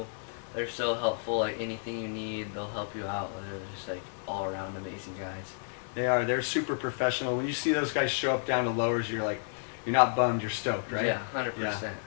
They're so helpful. Like anything you need, they'll help you out. They're just like all around amazing guys. They are. They're super professional. When you see those guys show up down to lowers, you're not bummed. You're stoked, right? Yeah, 100%. Yeah,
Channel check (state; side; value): silent; right; digital silence